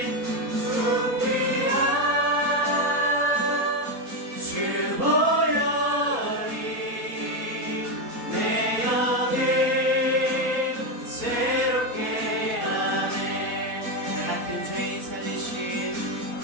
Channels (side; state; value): left; late; 4.3 ms